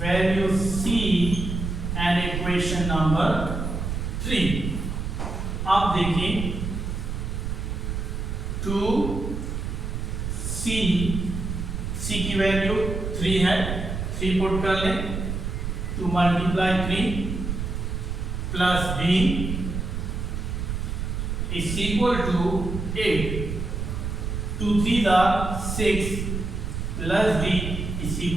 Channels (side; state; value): right; noise; rumble, 3 dB below the sound